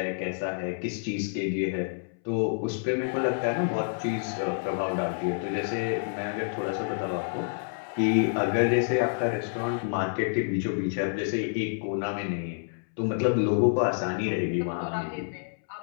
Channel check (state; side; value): silent; right; 59 dB below the other